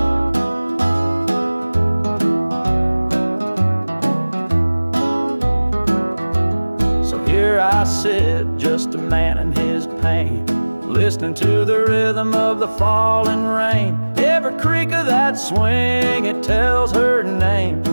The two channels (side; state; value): both; inverted; correlation -1.00